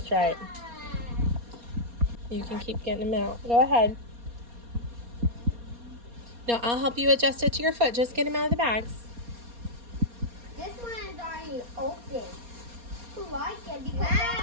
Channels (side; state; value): left; late; 4.2 ms